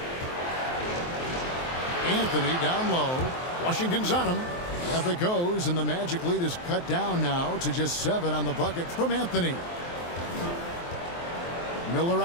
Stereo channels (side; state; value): right; late; 23 ms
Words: Anthony down low. Washington's on him. Up it goes, and the Magic lead is cut down now to just 7 on the bucket from Anthony. Miller